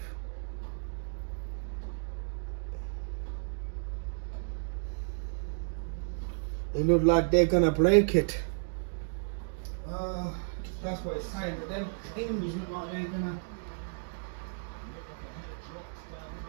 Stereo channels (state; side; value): silent; left; digital silence